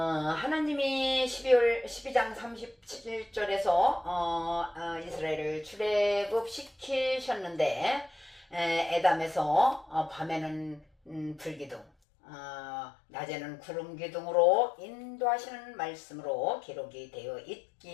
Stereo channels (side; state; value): right; drops out; at 11.9 s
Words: 12장 37절에서 이스라엘을 출애굽시키셨는데 에담에서 밤에는 불기둥 낮에는 구름기둥으로 인도하시는 말씀으로 기록이 되어